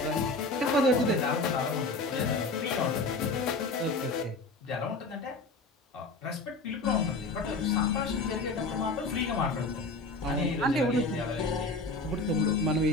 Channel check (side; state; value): right; quieter; 3.1 dB